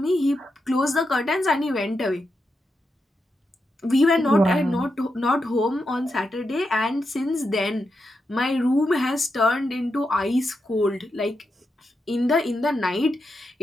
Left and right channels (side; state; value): both; normal; correlation 0.86